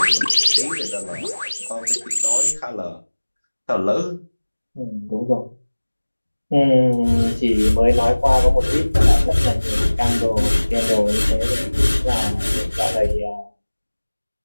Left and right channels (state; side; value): inverted; both; correlation -1.00